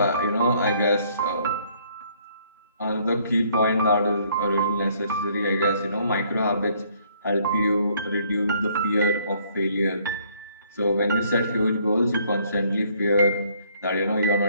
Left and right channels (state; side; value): inverted; both; correlation -0.65